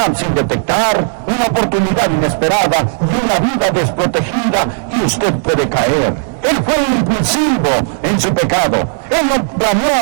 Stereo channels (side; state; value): left; silent; digital silence